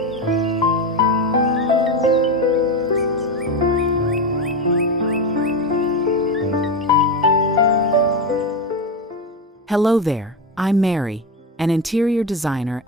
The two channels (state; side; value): normal; both; correlation 0.16